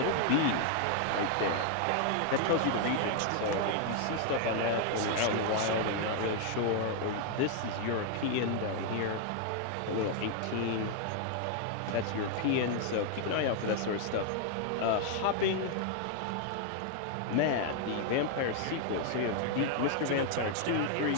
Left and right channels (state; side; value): different; both; correlation 0.00